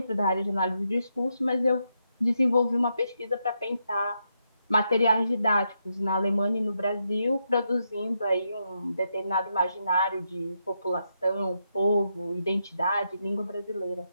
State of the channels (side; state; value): both; inverted; correlation -0.82